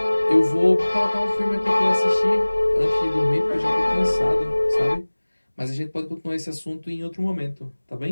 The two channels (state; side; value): inverted; both; correlation -1.00